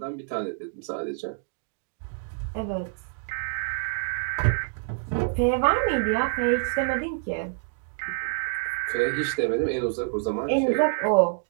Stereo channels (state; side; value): silent; left; digital silence